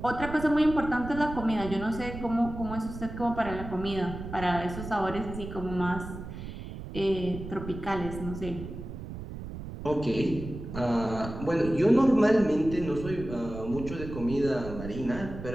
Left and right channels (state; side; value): noise; right; rumble, 10 dB below the sound